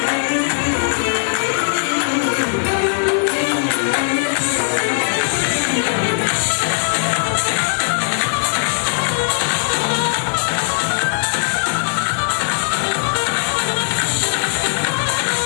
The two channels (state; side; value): silent; right; digital silence